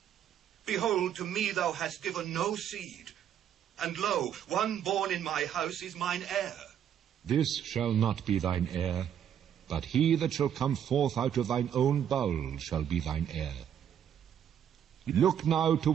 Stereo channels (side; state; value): left; quieter; 9.4 dB